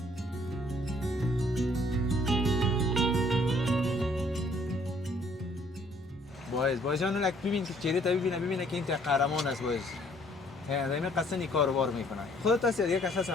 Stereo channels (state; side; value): normal; both; correlation 0.62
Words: باید جان لک ببین که چهره تا ببینه که این قهرمان است باید. دائما قصد این کارو میکنه. خودت هستی دیگه کس